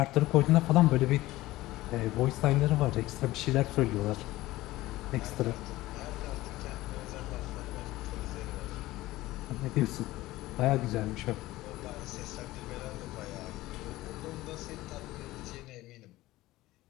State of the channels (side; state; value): right; quieter; 17.6 dB